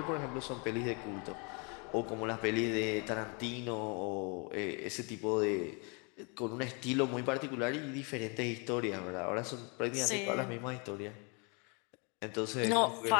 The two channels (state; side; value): quieter; right; 33.3 dB